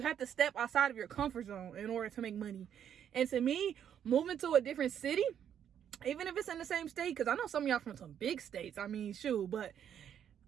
have to step outside of your comfort zone in order to make money. And to me, moving to a different city, even if it's in the same state, because I know some of y'all from some big states, I mean, shoot, but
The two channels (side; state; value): left; quieter; 9.1 dB